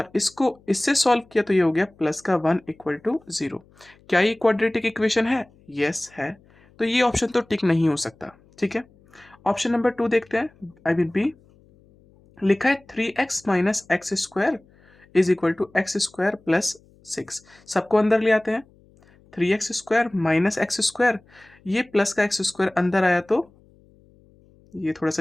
इसको इससे सॉल्व किया तो ये हो गया प्लस का 1 इक्वल टू 0। क्या ये क्वाड्रेटिक इक्वेशन है? यस है, तो ये ऑप्शन तो टिक नहीं हो सकता। ठीक है, ऑप्शन नंबर 2 देखते हैं, आई मीन बी। लिखा है 3x minus X square is equal to X square plus 6। सबको अंदर ले आते हैं। 3x square minus X square, ये प्लस का एक्स स्क्वायर अंदर आया तो ये थोड़ा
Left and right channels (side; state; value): left; noise; hum, 30 dB below the sound